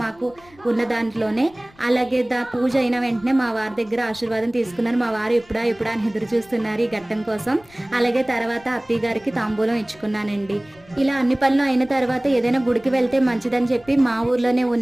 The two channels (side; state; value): left; noise; rumble, 27 dB below the sound